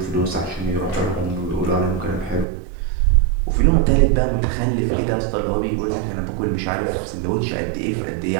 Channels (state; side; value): drops out; left; at 2.5 s